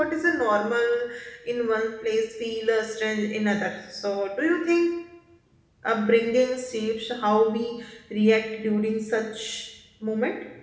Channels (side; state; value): both; identical; correlation 1.00